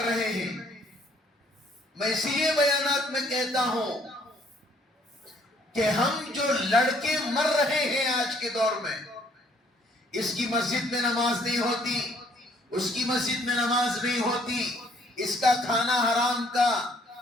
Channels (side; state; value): both; normal; correlation 0.63